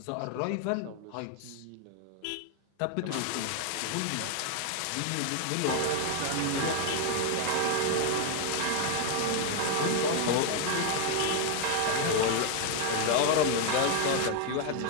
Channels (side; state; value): both; different; correlation 0.00